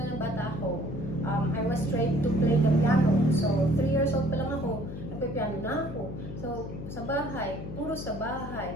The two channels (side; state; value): left; noise; hum, 9 dB below the sound